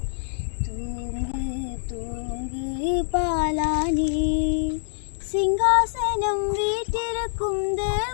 தூங்கு தூங்கு பாலானே. சிங்காசனம் வீட்டிருக்கும்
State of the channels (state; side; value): silent; right; digital silence